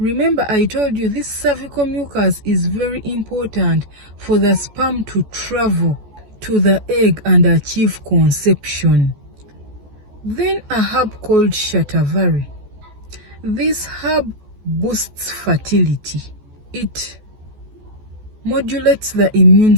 I told you this cervical mucus is very important for the sperm to travel to the egg and achieve conception. Then a herb called shatavari. This herb boosts fertility. It modulates the immune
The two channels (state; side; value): late; left; 14 ms